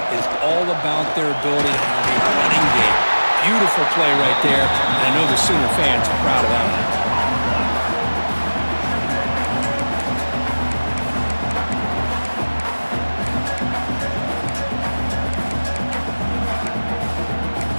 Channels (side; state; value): both; inverted; correlation -1.00